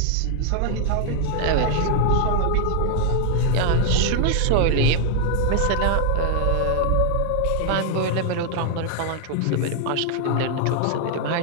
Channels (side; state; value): both; different; correlation 0.00